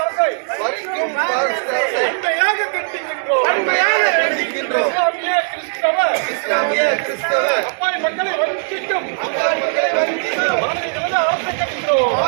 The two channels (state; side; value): silent; left; 66 dB below the other